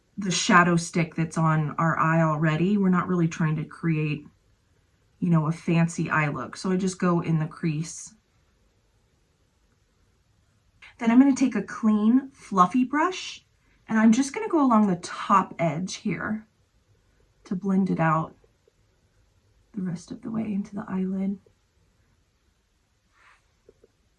the shadow stick that's on our eye already. We're not really trying to create, you know, a fancy eye look. So I just go in the crease. Then I'm going to take a clean, fluffy brush and I'm just going to go along the top edge here to blend it out the rest of the way into the eyelid.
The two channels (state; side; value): identical; both; correlation 1.00